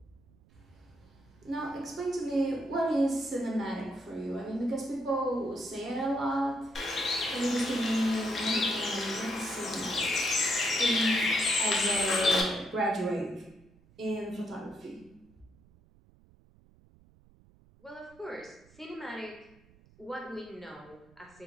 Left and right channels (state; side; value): noise; right; rumble, 28 dB below the sound